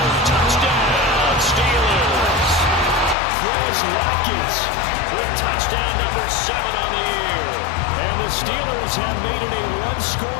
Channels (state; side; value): drops out; right; at 3.2 s